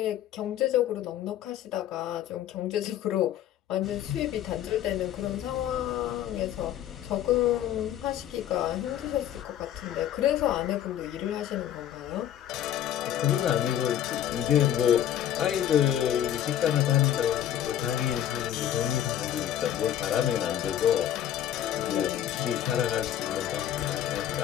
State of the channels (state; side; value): quieter; right; 11.0 dB